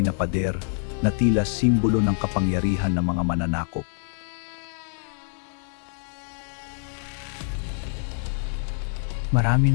na pader na tila simbolo ng kapangyarihan ng mga mananakop. Marami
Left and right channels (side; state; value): right; silent; digital silence